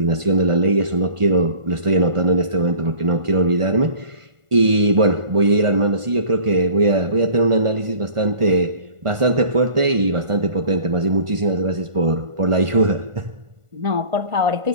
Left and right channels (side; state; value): left; late; 1.5 ms